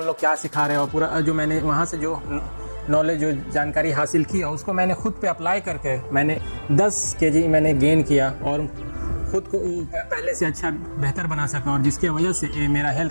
लोग क्या सिखा रहे हैं, और पूरा जो मैंने वहाँ से जो नॉलेज जो जानकारी हासिल की और उसको मैंने खुद पे अप्लाई करके मैंने 10 kg मैंने गेन किया और ख़ुद को पहले से अच्छा बेहतर बना सका, और जिसकी वजह से मेरा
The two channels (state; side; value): inverted; both; correlation -1.00